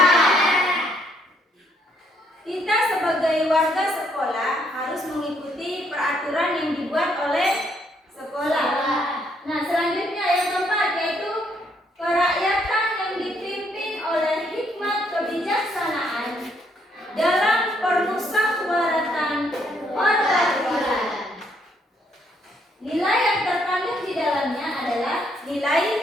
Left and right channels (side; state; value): both; normal; correlation 0.71